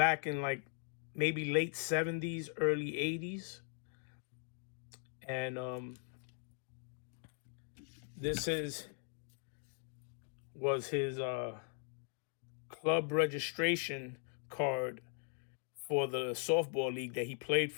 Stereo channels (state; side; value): silent; right; 51 dB below the other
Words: in like maybe late 70s, early 80s. And this was his club registration card for the softball league that he played